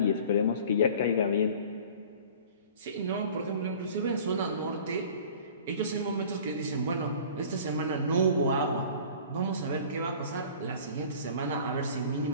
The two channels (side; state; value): both; inverted; correlation -0.45